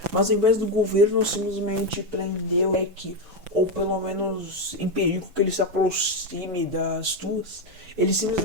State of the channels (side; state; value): left; late; 5.9 ms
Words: Mas ao invés do governo simplesmente prender o Jack, ou pelo menos impedir que ele se aproxime das duas, ele